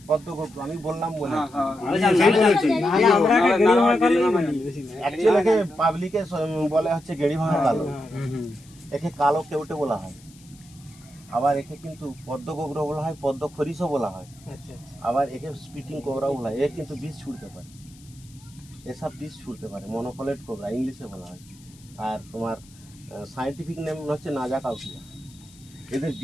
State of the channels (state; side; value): noise; left; hiss, 25 dB below the sound